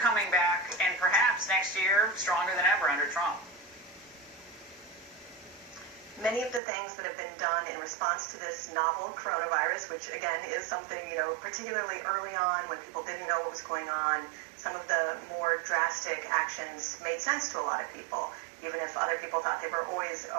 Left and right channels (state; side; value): drops out; left; at 6.6 s